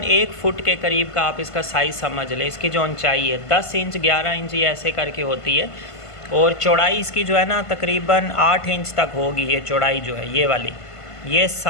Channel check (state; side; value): late; right; 1.5 ms